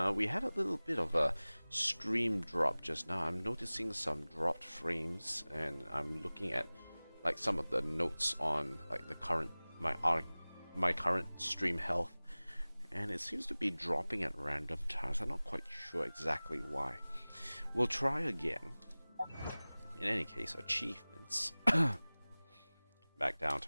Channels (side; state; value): both; inverted; correlation -0.99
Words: We had a little bit of a stream drop just now. I'm noticing some dropped frames, and I'm looking at like some of the notes on like the current my current stream health, and it seems to be dropping at random times. I'm not quite sure exactly why. We'll try again. In any case, achievements. Back down